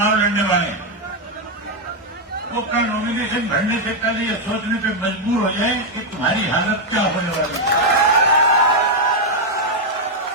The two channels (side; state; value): both; normal; correlation 0.00